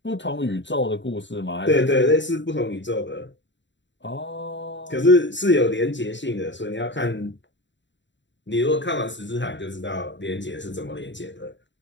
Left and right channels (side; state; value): right; late; 0.53 ms